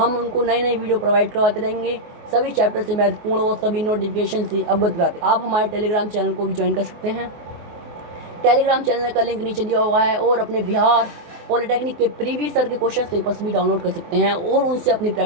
उनको नई नई वीडियो प्रोवाइड करवाते रहेंगे, सभी चैप्टर से महत्वपूर्ण और सभी नोटिफिकेशन से अवगत कराते। आप हमारे टेलीग्राम चैनल को भी ज्वाइन कर सकते हैं। टेलीग्राम चैनल का लिंक नीचे दिया हुआ है, और अपने बिहार पॉलिटेक्निक के प्रीवियस ईयर के क्वेश्चन पेपर्स भी डाउनलोड कर सकते हैं और उनसे अपनी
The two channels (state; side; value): late; left; 24 ms